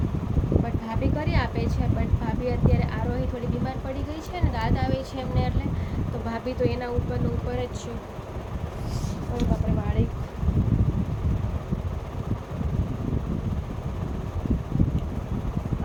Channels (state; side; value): identical; both; correlation 1.00